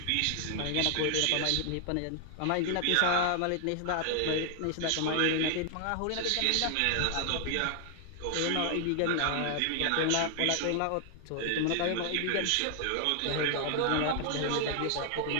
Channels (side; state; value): both; different; correlation 0.00